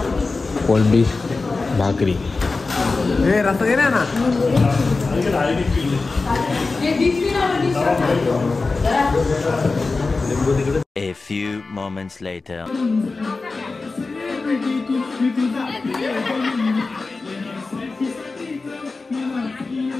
कोळंबी भाकरी हे रस्ता दे ना A few moments later.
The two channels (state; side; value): quieter; right; 3.8 dB